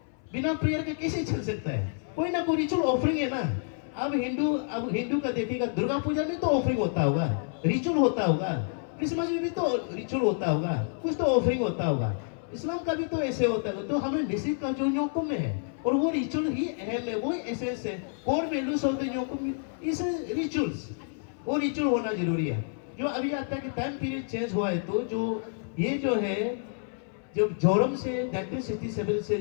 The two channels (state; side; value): silent; right; 59 dB below the other